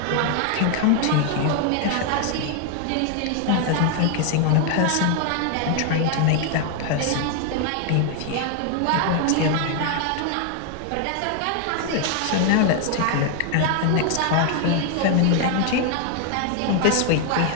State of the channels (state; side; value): different; both; correlation 0.00